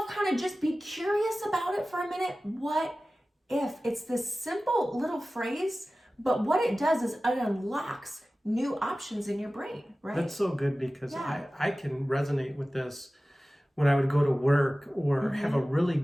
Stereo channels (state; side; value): normal; both; correlation 0.96